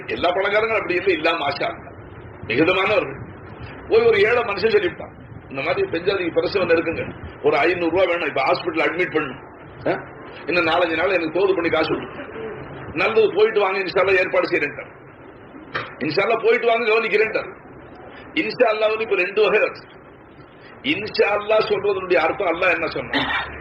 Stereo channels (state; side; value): identical; both; correlation 1.00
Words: எல்லா பணக்காரங்களும் அப்படி இல்லை, இல்லாம ஆஷா மிகுதமானவர்கள். போய் ஒரு ஏழை மனுஷன் சொல்லிவிட்டான், இந்த மாதிரி பெஞ்சாதிக்கு பிரசவம் இருக்குங்க, ஒரு 500 ரூபாய் வேணும், இப்ப ஹாஸ்பிட்டல் அட்மிட் பண்ணணும், இன்னும் 4-5 நாள் எனக்கு தோது பண்ணி காசு கொடுத்து, நல்லது போயிட்டு வாங்க, இன்ஷால்லா ஏற்பாடு செய்யறேன், இன்ஷால்லா போயிட்டு வாங்க கவனிக்கிறேன். இன்ஷால்லா வந்து இப்ப 2 வகை இருக்கு. இன்ஷால்லா சொல்றதனுடைய அர்த்தம் அல்லாஹ் என்ன சொன்னா,